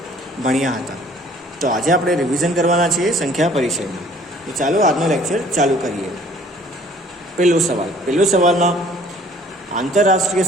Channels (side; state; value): both; normal; correlation 0.55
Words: ભણ્યા હતા. તો આજે આપણે રિવિઝન કરવાના છીએ સંખ્યા પરિચયમાં. તો ચાલો આજનો લેક્ચર ચાલુ કરીએ. પહેલો સવાલમાં આંતરરાષ્ટ્રીય